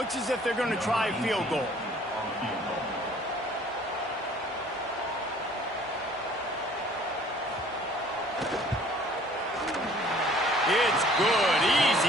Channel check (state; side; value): normal; both; correlation 0.54